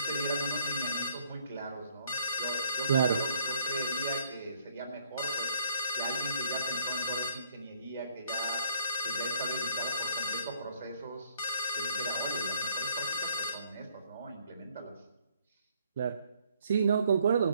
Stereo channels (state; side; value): inverted; both; correlation -0.65